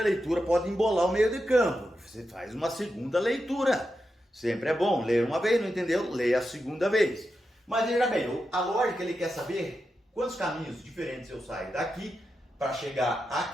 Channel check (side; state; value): both; normal; correlation 0.88